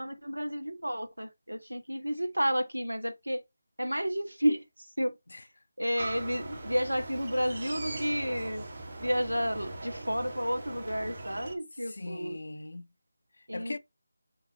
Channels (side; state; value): both; inverted; correlation -0.99